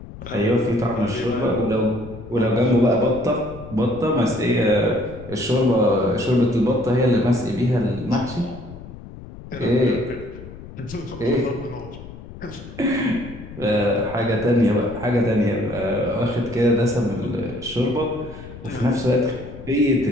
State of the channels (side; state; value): left; noise; rumble, 14 dB below the sound